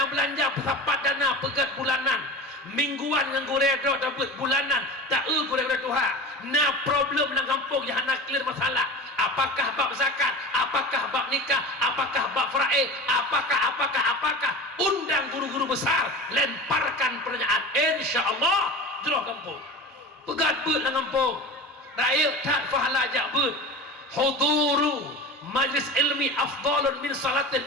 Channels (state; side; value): normal; both; correlation 0.32